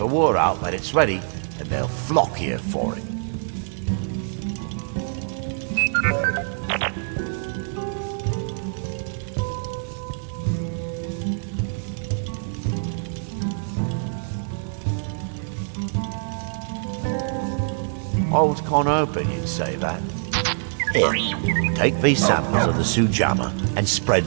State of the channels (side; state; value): left; silent; 62 dB below the other